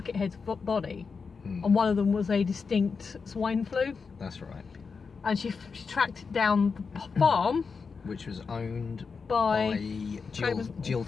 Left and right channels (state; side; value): quieter; right; 5.2 dB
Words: body, and one of them was a distinct swine flu. That's right. And she tracked down the farm, Which was owned by Jill